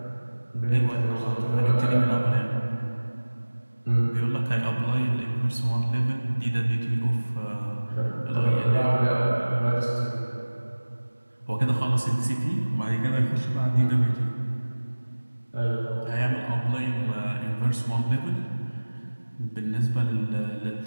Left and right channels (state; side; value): inverted; both; correlation -1.00